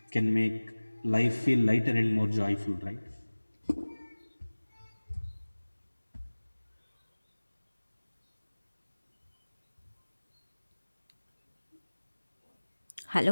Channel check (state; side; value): inverted; both; correlation -1.00